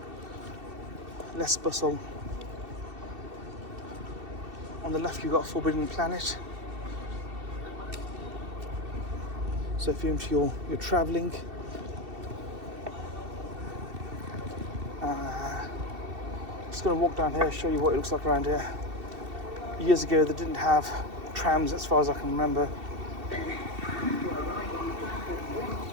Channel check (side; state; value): left; late; 2.7 ms